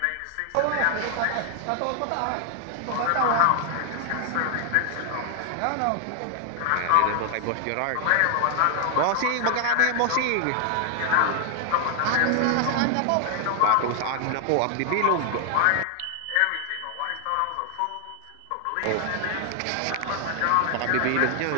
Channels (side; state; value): both; different; correlation 0.00